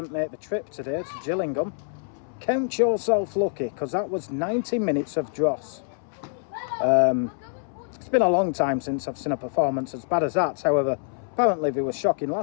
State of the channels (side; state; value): right; silent; 61 dB below the other